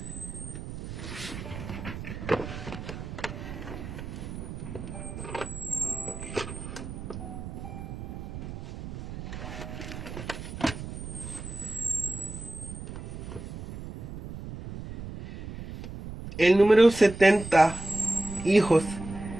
El número 70 hijos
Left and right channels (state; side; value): noise; right; rumble, 9 dB below the sound